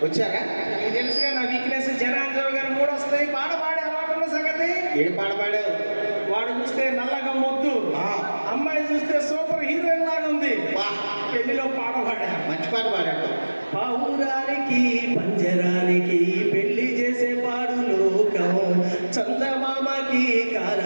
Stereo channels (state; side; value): inverted; both; correlation -1.00